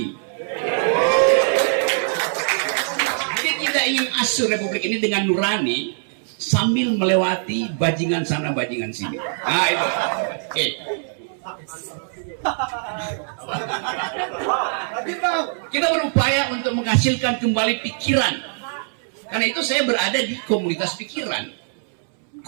Jadi kita ingin asuh Republik ini dengan nurani sambil melewati bajingan sana, bajingan sini. Nah itu. Oke. Kita berupaya untuk menghasilkan kembali pikiran. Karena itu saya berada di komunitas pikiran.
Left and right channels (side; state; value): left; silent; 64 dB below the other